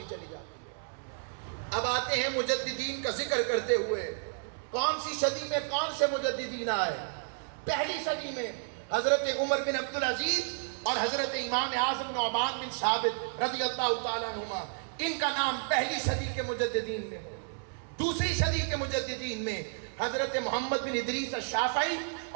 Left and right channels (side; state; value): left; silent; digital silence